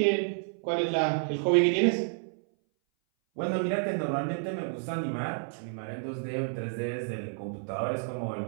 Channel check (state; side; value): silent; left; 58 dB below the other